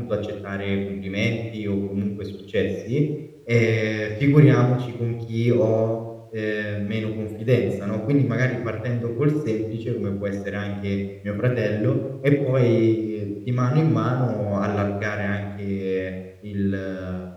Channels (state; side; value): identical; both; correlation 1.00